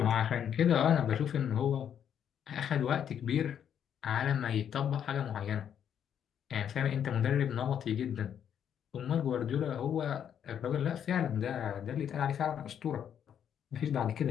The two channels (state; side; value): quieter; right; 8.9 dB